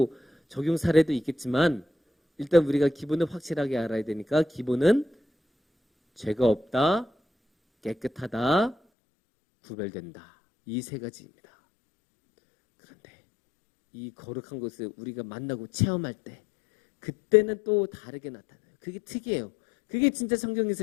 적용 사례도 있겠지만, 일단 우리가 기본을 확실하게 알아야 되니까, 기본은 죄가 없다, 깨끗하다, 구별된다. 이 세 가지입니다. 그런데 이 거룩한 것을 우리가 만나고 체험할 때, 그때는 또 다르게 나타나요. 그게 특이해요. 그게 진짜 성경에서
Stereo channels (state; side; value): drops out; right; at 8.8 s